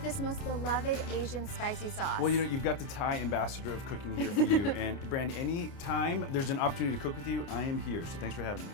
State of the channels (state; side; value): late; right; 29 ms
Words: this most beloved Asian spicy sauce. Well, you know, you've got the Thai ambassador of cooking here for you. And Brandy, any time there's an opportunity to cook with you, I am here. So thanks for having me.